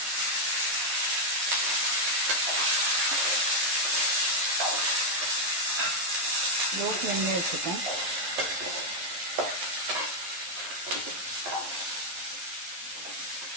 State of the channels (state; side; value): late; left; 11 ms